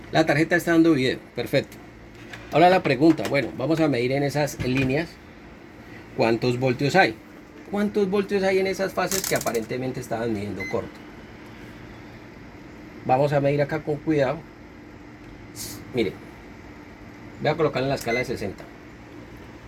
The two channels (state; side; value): identical; both; correlation 1.00